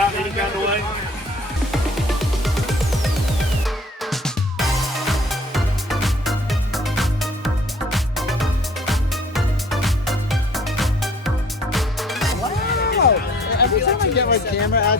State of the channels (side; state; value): both; normal; correlation 0.53